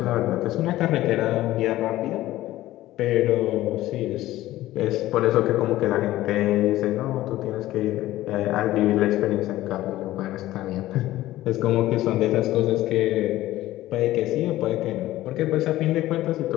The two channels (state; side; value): quieter; right; 15.6 dB